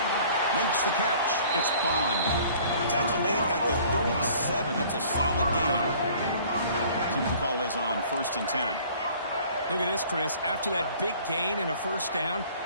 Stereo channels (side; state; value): both; inverted; correlation -0.52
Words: Makes the catch. It's Bond. Tackle made at the 37. That's a solid gain. See what the call is on 1st and 10. Look at this, Chris. After that big gain and a first down,